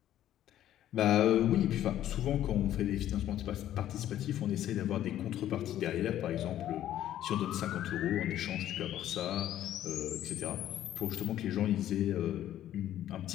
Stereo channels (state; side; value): quieter; right; 12.2 dB